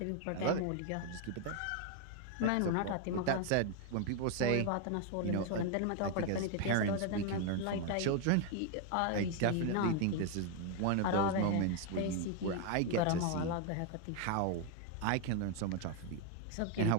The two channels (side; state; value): both; different; correlation 0.01